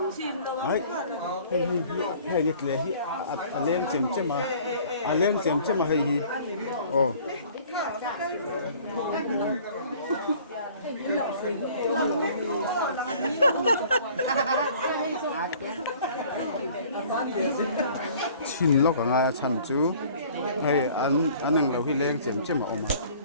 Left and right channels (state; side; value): inverted; both; correlation -0.52